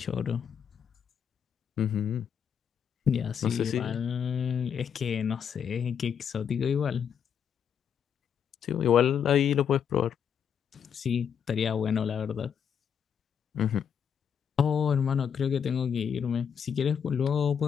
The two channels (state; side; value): quieter; right; 7.7 dB